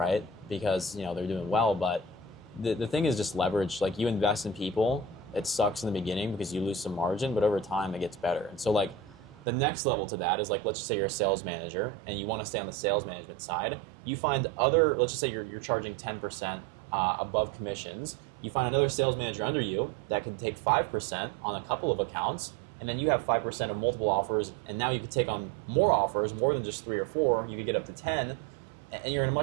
Because they're doing well, but the thing is just leverage. Like you invest in people, it sucks in the beginning because you lose some margin, but over time it gets better. And so like the next level to that is like, let's just say you're a sales manager and you want to stay on the sales management side. You find let's just say you're charging 10% above commissions. You find another sales manager under you that can take 5% on a couple of accounts, and then you have 5% of multiple offers, and now you could take on more offers, more than just 3 or 4. You could get up to 10, and you're in a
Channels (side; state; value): left; drops out; at 9.4 s